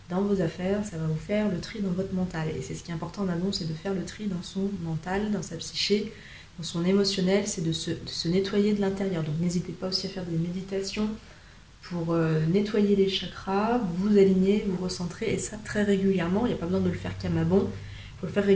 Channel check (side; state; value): both; identical; correlation 1.00